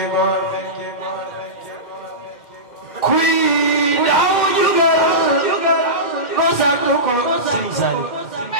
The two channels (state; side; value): late; right; 2.0 ms